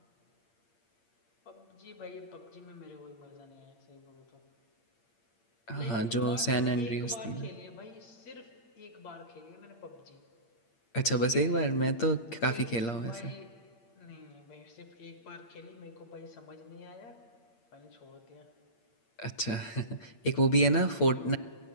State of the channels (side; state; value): right; late; 8.7 ms